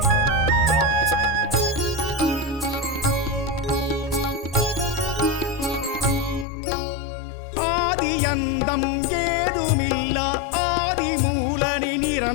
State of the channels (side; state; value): right; drops out; at 6.5 s